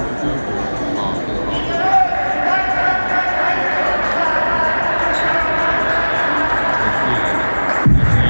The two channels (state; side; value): inverted; both; correlation -1.00